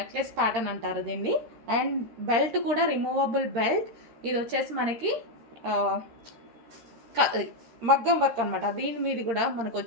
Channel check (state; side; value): late; left; 13 ms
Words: ప్యాటర్న్ అంటారు దీన్ని. అండ్ బెల్ట్ కూడా రిమూవబుల్ బెల్ట్. ఇది వచ్చేసి మనకి మగ్గం వర్క్ అనమాట. దీని మీద కూడా మనకు